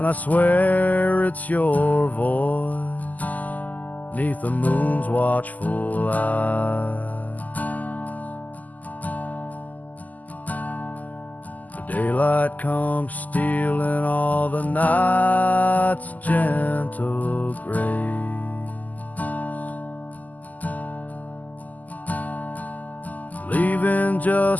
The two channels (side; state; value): right; late; 0.080 ms